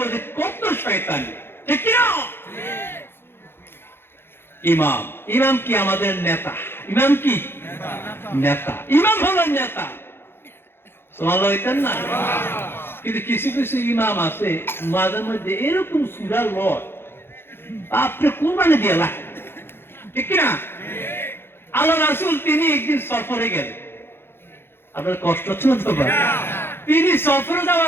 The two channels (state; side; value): late; right; 0.11 ms